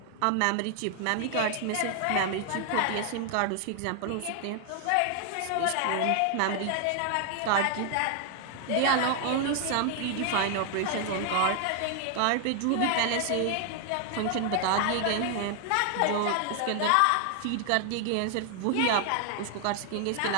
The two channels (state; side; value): different; both; correlation 0.00